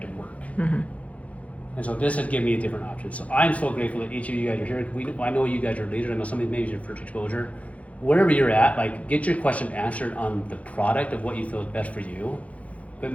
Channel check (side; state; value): right; late; 0.066 ms